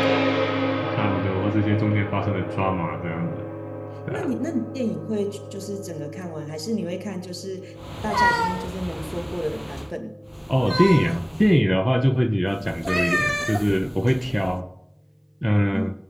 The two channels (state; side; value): identical; both; correlation 1.00